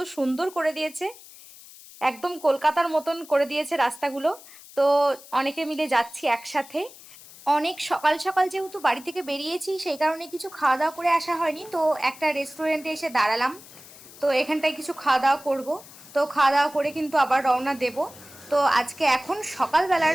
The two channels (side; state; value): left; noise; hiss, 19 dB below the sound